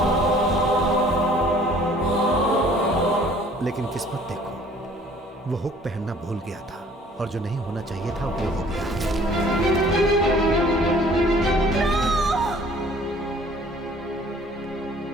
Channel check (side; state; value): both; normal; correlation 0.55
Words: लेकिन किस्मत देखो, वो हुक पहनना भूल गया था और जो नहीं होना चाहिए था वो हो गया।